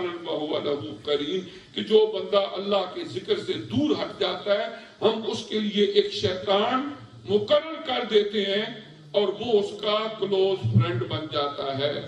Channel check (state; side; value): identical; both; correlation 1.00